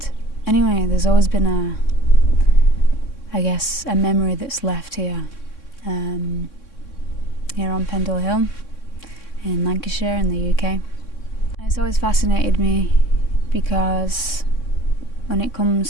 anyway, there's always been a memory that's left here, here on Pendle Hill in Lancashire in the UK. And it's always fascinated me because when it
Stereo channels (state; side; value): late; right; 3.6 ms